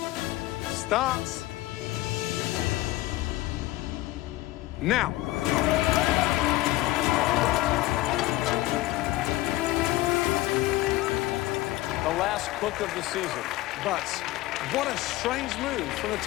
starts now. The last cook of the season. But what a strange move from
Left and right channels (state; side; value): quieter; right; 17.4 dB